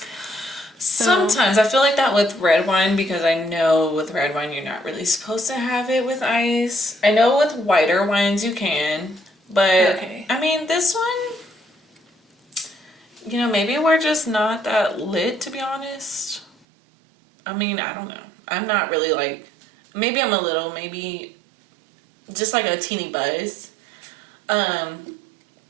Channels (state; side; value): drops out; left; at 16.5 s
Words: Sometimes I feel like that with red wine, because I know with red wine you're not really supposed to have it with ice. I know with whiter wines you can, but okay. I mean this one, maybe we're just not that lit, to be honest. I mean, I don't know. I'm not really like, maybe I'm a little, maybe just like a teeny buzz.